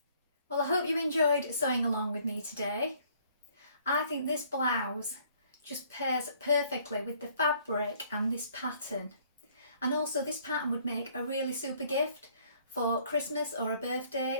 Well, I hope you enjoyed sewing along with me today. I think this blouse just pairs perfectly with the fabric and this pattern. And also this pattern would make a really super gift for Christmas or a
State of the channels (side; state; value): both; inverted; correlation -0.61